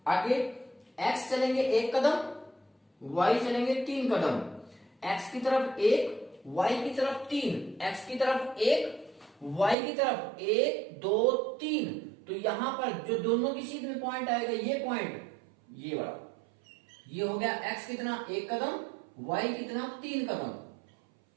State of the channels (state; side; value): drops out; left; at 9.8 s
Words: आगे x चलेंगे 1 कदम, y चलेंगे 3 कदम। x की तरफ 1, y की तरफ 3, x की तरफ 1 y की तरफ 1 2 3। तो यहां पर जो दोनों की सीध में पॉइंट आएगा, ये पॉइंट, ये वाला, ये हो गया x कितना 1 कदम, y कितना 3 कदम।